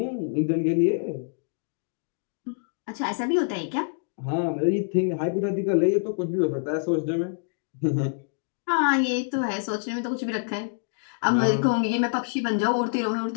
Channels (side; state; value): right; silent; digital silence